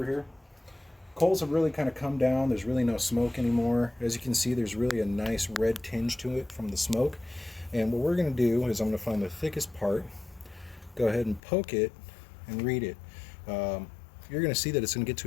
here. Coals have really kind of come down. There's really no smoke anymore. As you can see, there's really a nice red tinge to it from the smoke. And what we're going to do is I'm going to find the thickest part, go ahead and poke it and read it. You're going to see that it's going to get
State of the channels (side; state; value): right; drops out; at 11.4 s